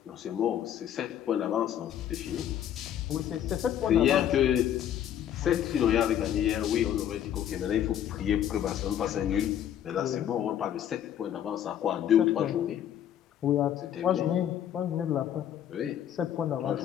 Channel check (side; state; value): right; quieter; 10.4 dB